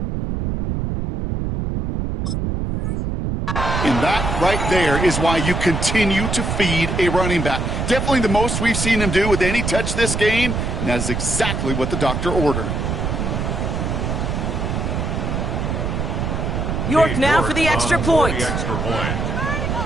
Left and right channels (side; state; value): right; noise; rumble, 1 dB below the sound